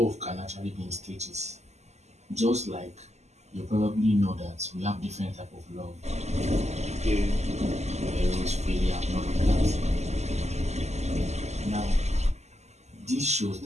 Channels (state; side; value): late; left; 0.33 ms